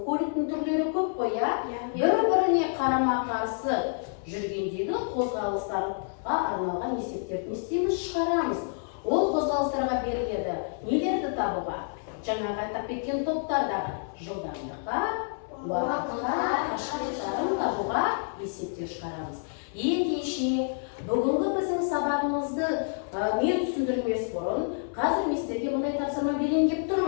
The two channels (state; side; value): silent; right; 59 dB below the other